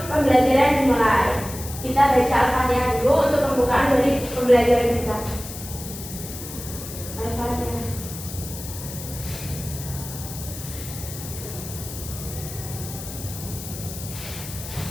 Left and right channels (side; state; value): left; noise; hiss, 11 dB below the sound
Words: pembelajaran dimulai. Kita baca Al-Fatihah dulu untuk pembukaan dari pembelajaran kita. Al-Fatihah.